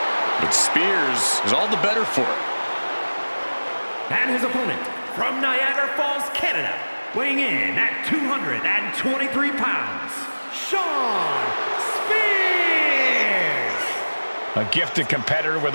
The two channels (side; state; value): both; inverted; correlation -1.00